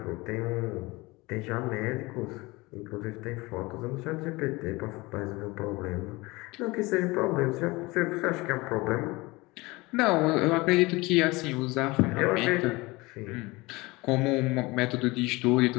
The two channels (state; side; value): quieter; right; 22.8 dB